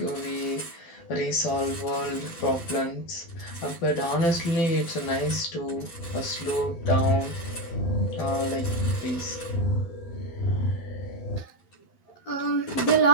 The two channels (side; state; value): right; late; 12 ms